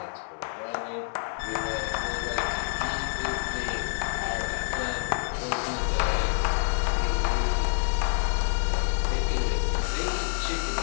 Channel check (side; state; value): right; silent; digital silence